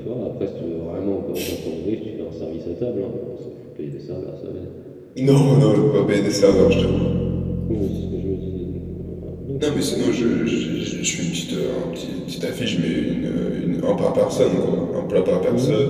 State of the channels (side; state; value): both; identical; correlation 1.00